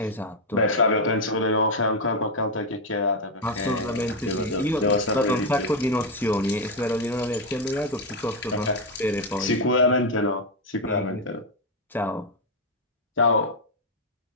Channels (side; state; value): both; normal; correlation 0.04